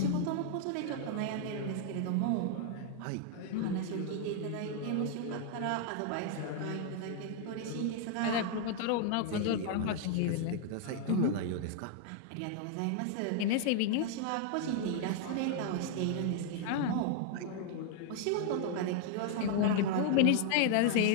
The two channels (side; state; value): both; different; correlation 0.00